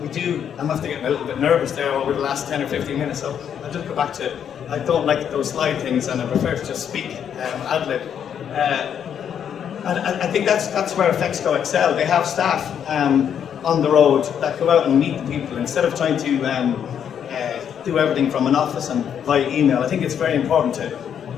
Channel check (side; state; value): right; quieter; 8.5 dB